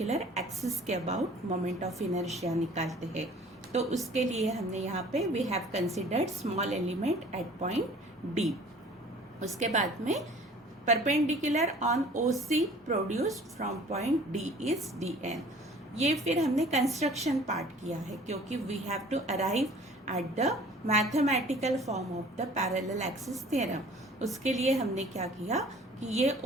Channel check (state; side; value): normal; both; correlation 0.49